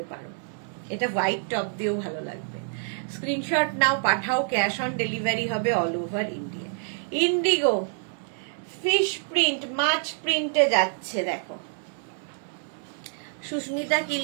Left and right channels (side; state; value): left; silent; 58 dB below the other